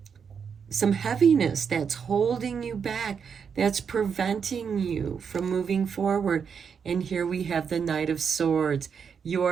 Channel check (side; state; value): left; quieter; 6.6 dB